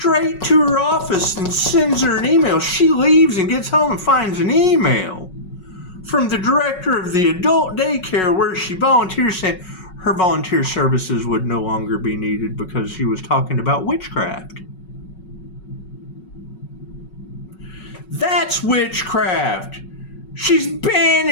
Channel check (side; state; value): right; late; 5.4 ms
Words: to her office and sends her an email. She leaves and gets home and finds an email from the director of the adult daycare where she volunteers, saying her volunteer services would no longer be needed because she was talking about witchcraft. That's witchcraft. She's